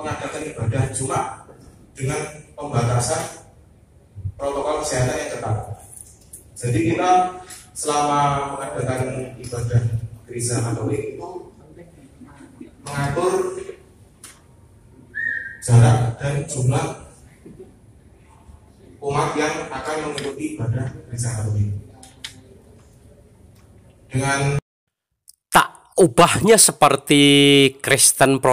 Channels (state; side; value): identical; both; correlation 1.00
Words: ibadah Jumat dengan pembatasan protokol kesehatan yang ketat. Jadi kita selama mengadakan ibadah gereja Katolik itu mengatur jarak dan jumlah umat yang akan mengikuti ibadah gereja Katolik. Dengan tak ubahnya seperti Kristen